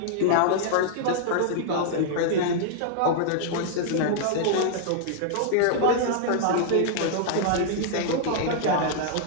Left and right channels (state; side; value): different; both; correlation -0.01